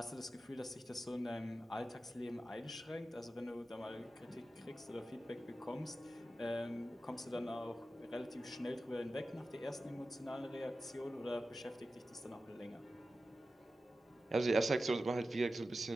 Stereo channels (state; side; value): normal; both; correlation 0.93